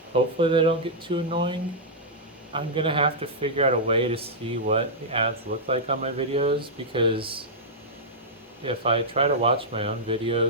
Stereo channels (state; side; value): normal; both; correlation -0.09